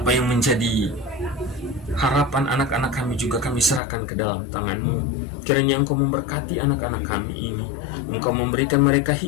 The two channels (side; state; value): right; drops out; at 3.8 s